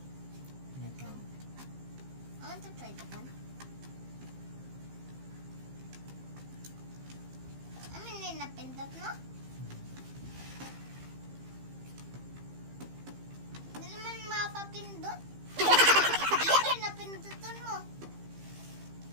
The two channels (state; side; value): late; left; 15 ms